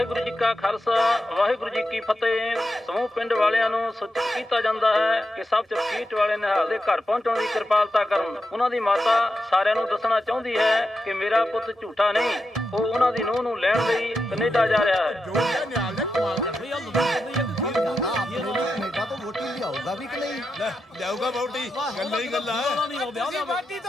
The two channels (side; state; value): both; normal; correlation 0.87